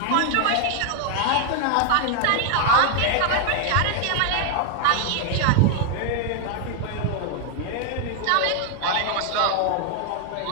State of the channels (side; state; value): both; different; correlation 0.00